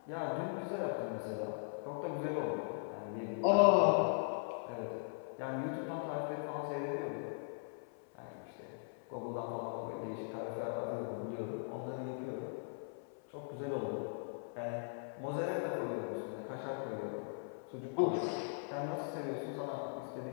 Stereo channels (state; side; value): silent; right; 51 dB below the other